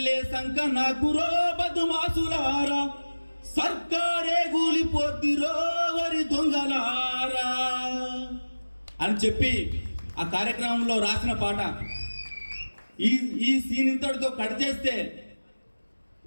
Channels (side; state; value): both; inverted; correlation -1.00